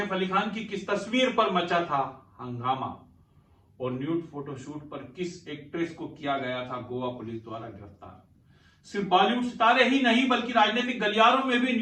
अली खान की किस तस्वीर पर मचा था हंगामा। और न्यूड फोटोशूट पर किस एक्ट्रेस को किया गया था गोवा पुलिस द्वारा गिरफ्तार। सिर्फ बॉलीवुड सितारे ही नहीं बल्कि राजनीतिक गलियारों में भी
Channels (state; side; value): identical; both; correlation 1.00